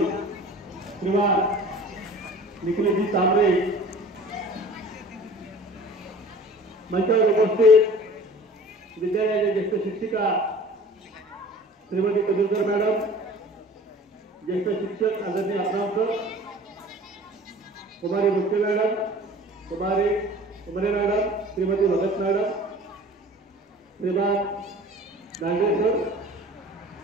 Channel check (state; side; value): normal; both; correlation 0.44